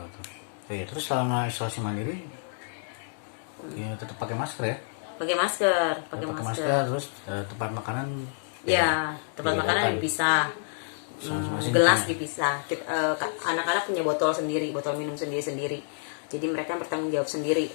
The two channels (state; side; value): silent; right; digital silence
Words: Terus selama isolasi mandiri ya tetap pakai masker ya. Pakai masker. Terus tempat makanan tempat makanan dipisah. Gelas dipisah. Anak-anak punya botol sendiri, botol minum sendiri. Jadi mereka bertanggung jawab sendiri,